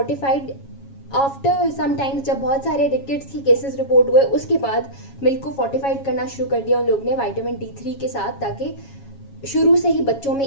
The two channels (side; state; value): right; late; 7.3 ms